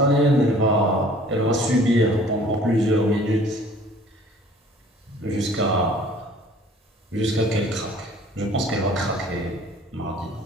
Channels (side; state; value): both; normal; correlation 0.52